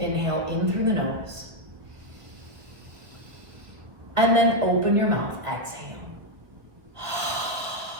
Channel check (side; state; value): left; late; 1.3 ms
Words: in through the nose. And then open your mouth, exhale.